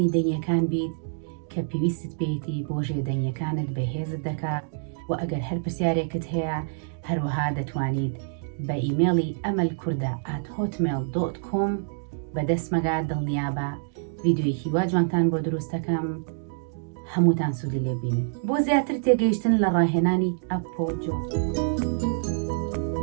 دەنگیەکان بیت کە پێویستت پێیەتی بۆ ژێدەنگیەکانت بەهێزت دەکات و ئەگەر هەر پرسیارێکت هەیە هەروەها دەتوانیت بە ئیمێڵی amalkurda@hotmail.com بەدەستمەگا دڵنیابە ڤیدیۆیەکی وا جوانتان بۆ دروستەکەم هەمووتان سوودی لێبینن بۆ زیاتر تێگەیشتن لە ڕاهێنانی ئەپۆجۆ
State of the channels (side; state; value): left; silent; digital silence